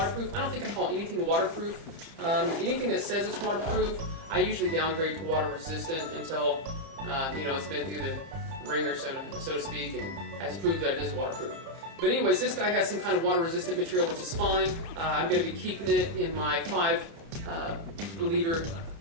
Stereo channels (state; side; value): late; left; 30 ms